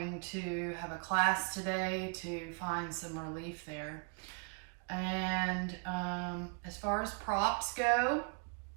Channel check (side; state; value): left; quieter; 38.2 dB